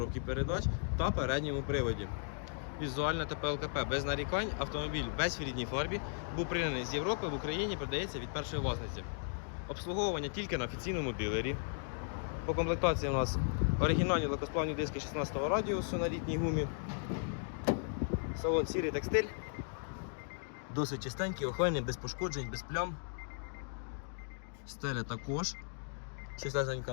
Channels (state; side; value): silent; right; digital silence